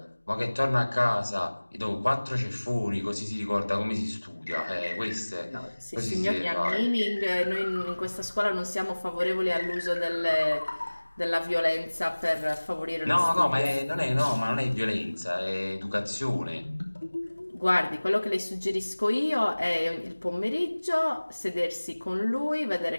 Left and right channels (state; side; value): inverted; both; correlation -1.00